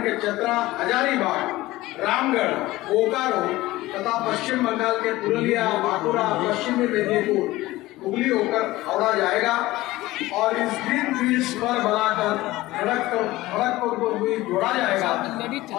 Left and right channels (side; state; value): right; quieter; 18.0 dB